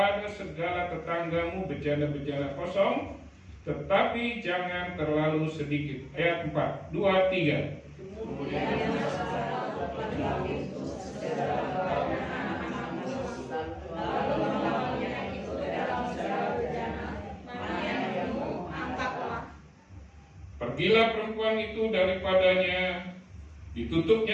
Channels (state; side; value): identical; both; correlation 1.00